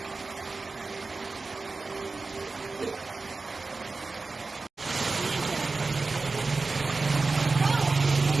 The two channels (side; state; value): left; quieter; 3.8 dB